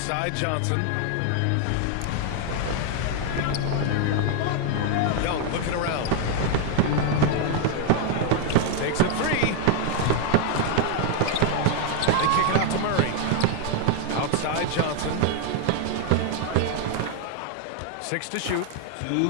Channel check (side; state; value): both; different; correlation 0.01